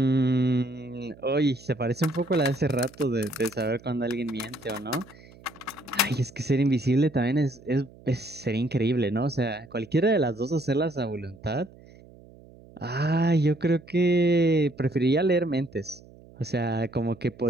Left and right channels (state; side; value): noise; right; hum, 23 dB below the sound